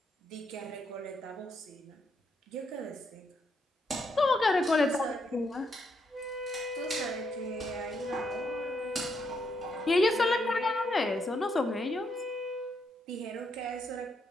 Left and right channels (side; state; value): both; normal; correlation 0.77